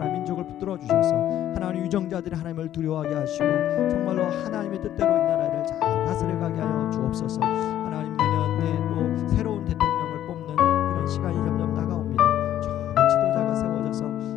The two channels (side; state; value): right; quieter; 11.8 dB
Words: 민족을 붙들어 주셔서 하나님 유정자들이 하나님을 두려워하게 하시고 정말로 하나님의 뜻대로 이 나라를 잘 다스려가게 하여 주옵소서. 하나님 내년에 또 새로운 대통령을 뽑는 그런 시간이 점점 다가옵니다. 좋은 지도자가